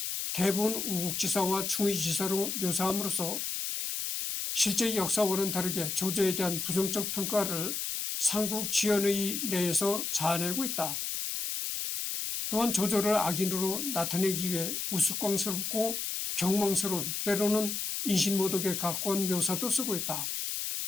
대부분 우국지사와 충의지사로 묘사함으로써 실제 역사와는 다르게 조조에 대한 부정적 평가를 삼국지연의 내에서 자아내고 있다. 또한 조조를 악인으로 나타내기 위해 우스꽝스럽고 경망스러운 때로는 인신모독에 가까운 묘사도 쓰고 있다.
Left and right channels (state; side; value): noise; left; hiss, 2 dB below the sound